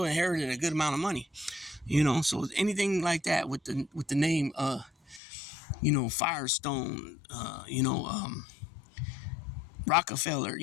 a good amount of money. So anything like that with the name, Firestone, Rockefeller,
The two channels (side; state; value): right; drops out; at 5.2 s